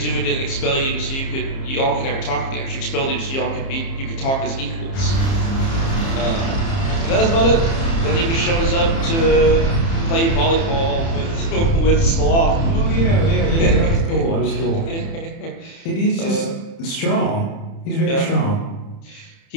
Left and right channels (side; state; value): right; late; 30 ms